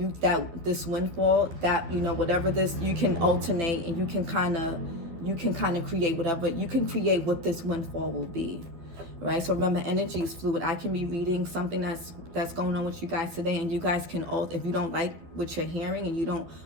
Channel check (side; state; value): left; late; 12 ms